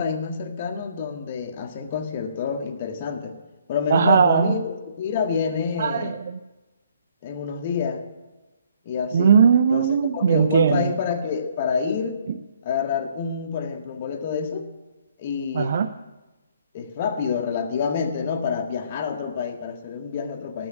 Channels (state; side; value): inverted; both; correlation -0.63